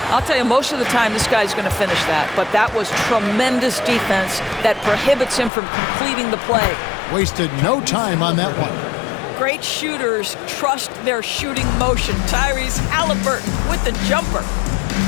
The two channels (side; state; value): right; drops out; at 5.5 s